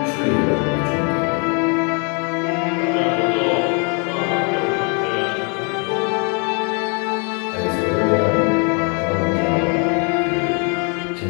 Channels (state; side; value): quieter; right; 36.2 dB